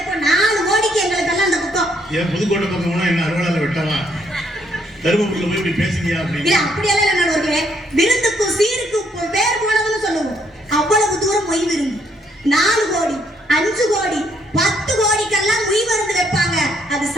4 கோடிக்கு எங்களுக்கெல்லாம் அந்த பக்கம். ஏன் புதுக்கோட்டை பக்கம் போனா என்ன அறுவலால வெட்டவா தருமபுரியில போய் இப்படி பேசுறியா அப்படின்னு? இல்ல அப்படியெல்லாம் இல்ல நடுவர்களே, விருந்துக்கும் சீருக்கும் பேர் போனதுன்னு சொல்லுவோம். அவ்வளவு தூரம் மொய் விருந்து 4 கோடி 5 கோடி 10 கோடிக்கெல்லாம் மொய் விருந்து வைப்பாங்க. அது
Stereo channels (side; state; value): both; normal; correlation 0.70